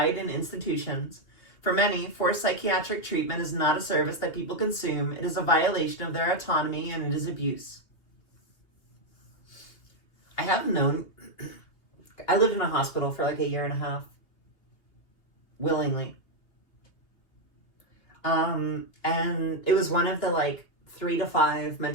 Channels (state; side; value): late; right; 2.8 ms